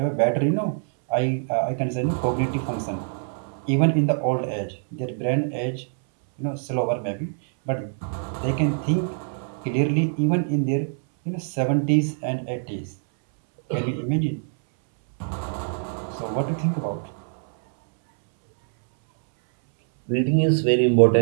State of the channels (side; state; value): left; silent; 63 dB below the other